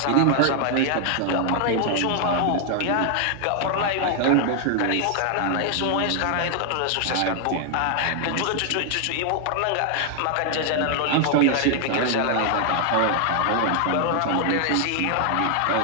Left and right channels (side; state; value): both; different; correlation 0.00